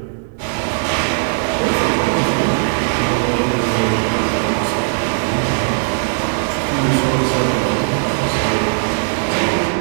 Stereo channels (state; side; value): silent; left; digital silence